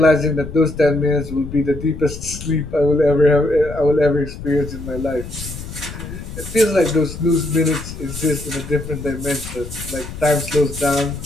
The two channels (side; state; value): left; noise; rumble, 11 dB below the sound